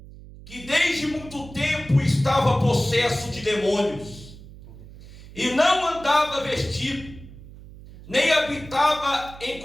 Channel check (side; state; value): right; noise; hum, 17 dB below the sound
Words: que desde muito tempo estava possesso de demônios, e não andava vestido, nem habitava em